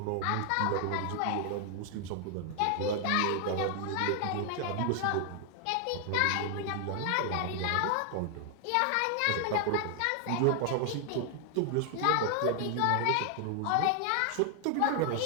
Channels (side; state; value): both; different; correlation 0.00